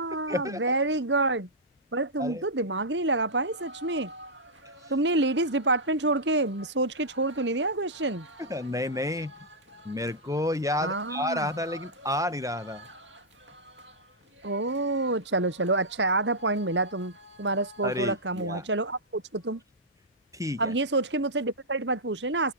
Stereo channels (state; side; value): normal; both; correlation -0.09